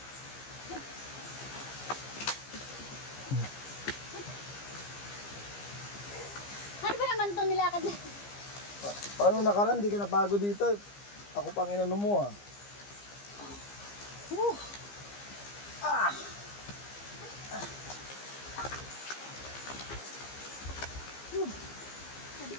Ano ba naman itong nilakad na? Paano nakaraan? Di ka nabago dito. Ako pang inano mo ah.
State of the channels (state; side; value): late; right; 15 ms